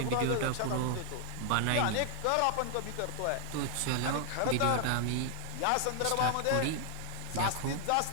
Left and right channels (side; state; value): both; different; correlation 0.00